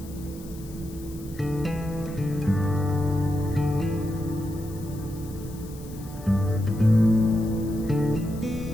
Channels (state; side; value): noise; left; hiss, 20 dB below the sound